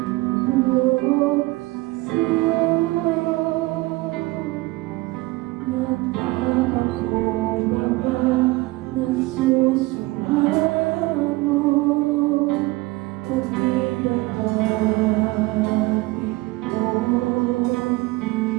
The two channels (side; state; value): left; quieter; 21.1 dB